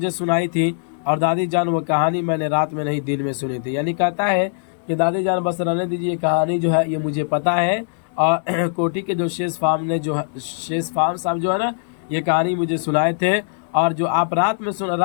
सुनाई थी, और दादी जान वो कहानी मैंने रात में नहीं दिन में सुनी थी। यानी कहता है कि दादी जान बस रहने दीजिए, कहानी जो है ये मुझे पता है। और कोठी के जो शेष फार्म साहब जो है ना, ये कहानी मुझे सुनाए थे। और जो आप रात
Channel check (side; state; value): right; silent; digital silence